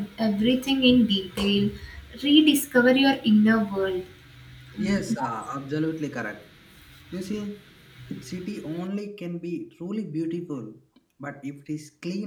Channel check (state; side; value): identical; both; correlation 1.00